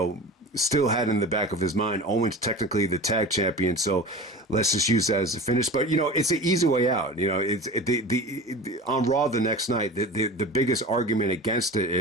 still had in the back of his mind, Owen's technically the tag champion, so let's just use that as a finish. But it's an easy way out. It's on Raw the next night. The biggest argument against it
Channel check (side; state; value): both; normal; correlation 0.34